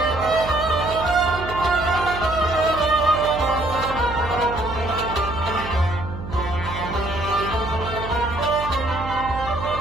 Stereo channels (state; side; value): noise; right; hum, 10 dB below the sound